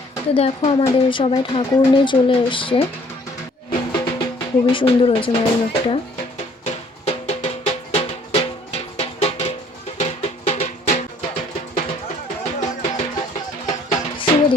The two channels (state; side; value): normal; both; correlation 0.59